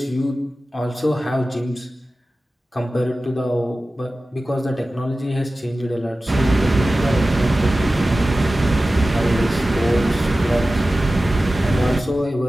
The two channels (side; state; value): both; normal; correlation 0.95